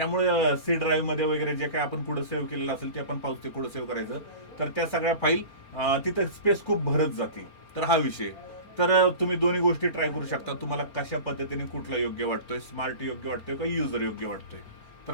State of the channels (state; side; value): late; right; 4.4 ms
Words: सी ड्राईव्ह मध्ये वगैरे जे काय आपण पुढे सेव्ह केलेलं असेल ते आपण पाहू, ते पुढे सेव्ह करायचं. तर त्या सगळ्या फाईल तिथं स्पेस खूप भरत जाते. तर हा विषय. तर तुम्ही दोन्ही गोष्टी ट्राय करू शकता, तुम्हाला कशा पद्धतीने कुठला योग्य वाटतोय, स्मार्ट योग्य वाटतोय का युजर योग्य वाटतोय. तर